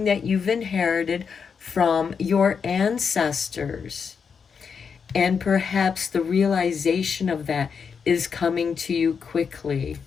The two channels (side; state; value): right; quieter; 6.2 dB